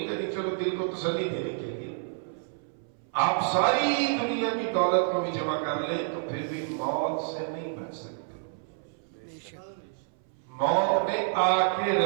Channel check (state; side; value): silent; left; 59 dB below the other